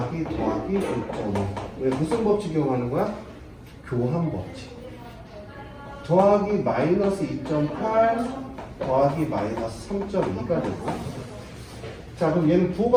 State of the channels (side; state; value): both; identical; correlation 1.00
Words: 5.5 왜 무슨 법칙 이용하는 거야? 교환 법칙. 더하기 마이너스 2.8 더하기 마이너스 3.2가 되고, 자 그럼 얘는